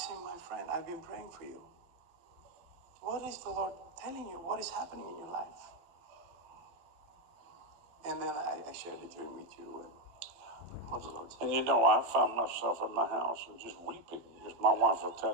my friend, I've been praying for you. What is the Lord telling you? What is happening in your life? And then I shared the dream with you and what the Lord said. And you know, I found myself in my house and just weeping. Just my wife will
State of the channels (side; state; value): left; late; 12 ms